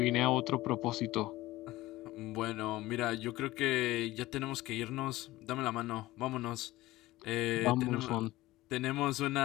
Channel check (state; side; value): quieter; right; 17.6 dB